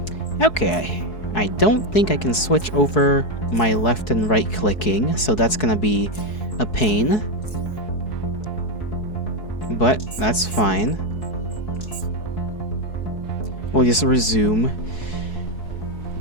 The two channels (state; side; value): late; right; 4.7 ms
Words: Okay, I don't think I can switch over my left and right clicking, so that's gonna be a pain. But that's fine. We'll just resume.